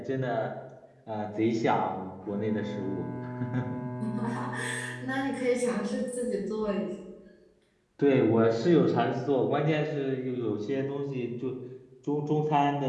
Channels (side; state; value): both; identical; correlation 1.00